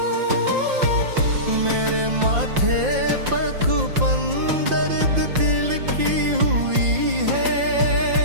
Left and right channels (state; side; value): late; left; 5.7 ms